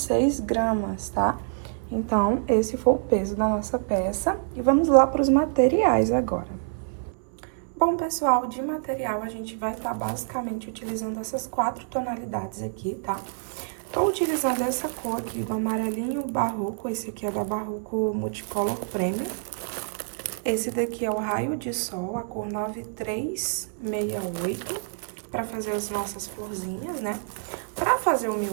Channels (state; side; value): silent; left; 59 dB below the other